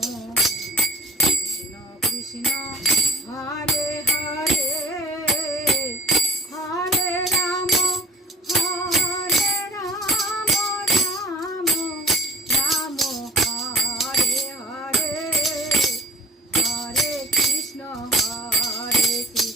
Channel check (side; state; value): both; normal; correlation 0.47